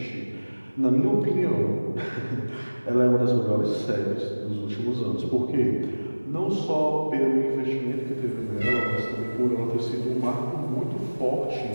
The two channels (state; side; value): inverted; both; correlation -1.00